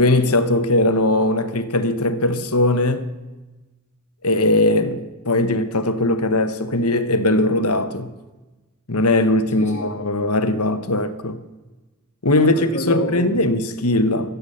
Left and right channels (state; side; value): normal; both; correlation -0.06